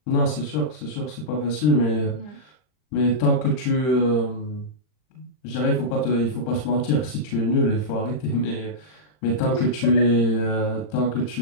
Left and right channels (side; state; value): right; late; 39 ms